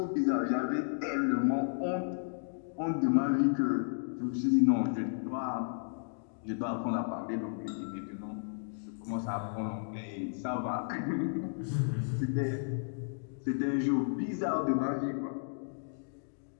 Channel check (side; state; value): right; silent; digital silence